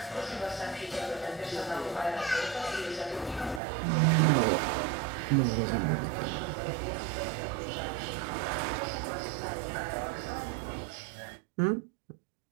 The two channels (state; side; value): drops out; left; at 3.6 s